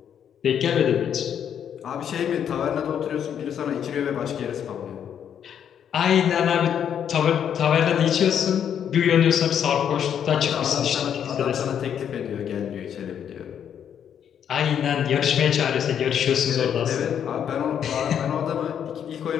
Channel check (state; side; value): quieter; right; 8.8 dB